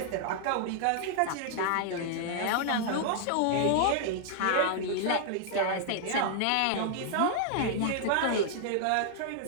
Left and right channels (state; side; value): different; both; correlation -0.01